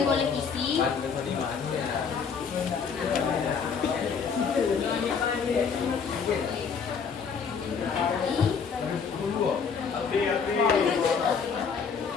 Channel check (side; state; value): right; quieter; 6.1 dB